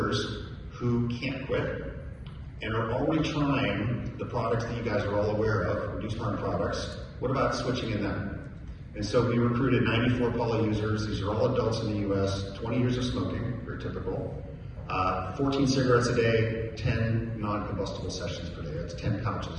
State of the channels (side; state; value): both; identical; correlation 1.00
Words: who can't quit and are already trying the products that you guys are all aware of, reduced harm products? What about switching in them? And so we recruited 94 poly users. These are all adults in the US, 20 years of smoking, very typical. 14 cigarettes a day, 10 non-combustible sessions per day. That's 10